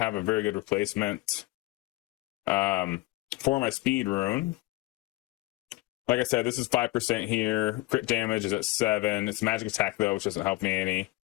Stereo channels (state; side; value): quieter; right; 20.1 dB